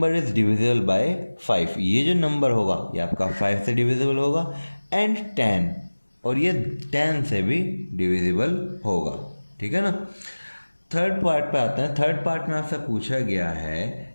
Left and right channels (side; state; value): both; inverted; correlation -1.00